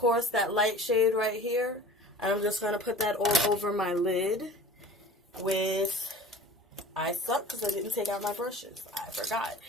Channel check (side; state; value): both; normal; correlation 0.42